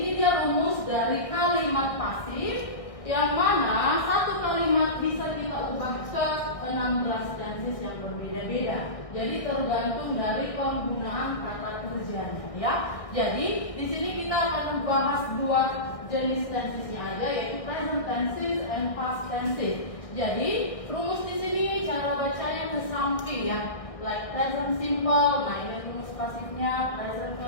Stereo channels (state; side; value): late; right; 1.6 ms